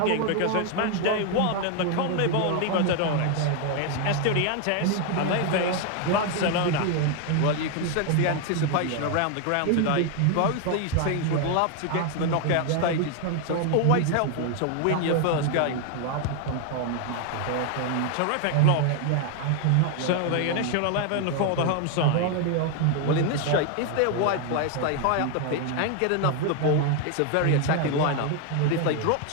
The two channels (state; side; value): different; both; correlation 0.01